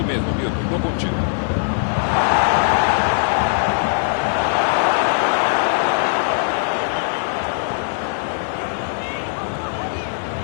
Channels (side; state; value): right; silent; digital silence